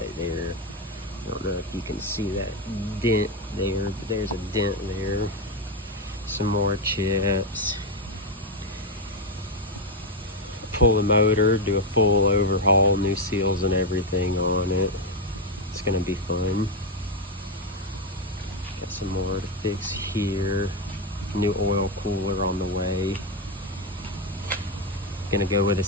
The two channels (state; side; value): normal; both; correlation 0.07